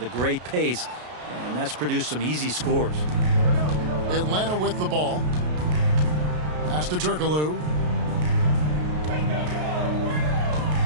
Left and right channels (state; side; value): late; left; 33 ms